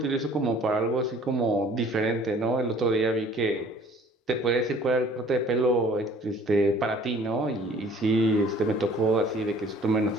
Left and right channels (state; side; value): normal; both; correlation 0.53